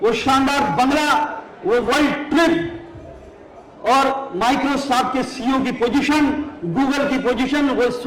वो शानदार बंगला, वो वर्ल्ड ट्रिप और माइक्रोसॉफ्ट के सीईओ की पोजीशन, गूगल की पोजीशन, वो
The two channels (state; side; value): identical; both; correlation 1.00